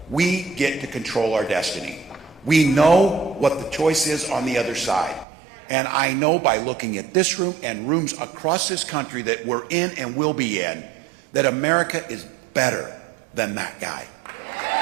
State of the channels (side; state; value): left; drops out; at 5.2 s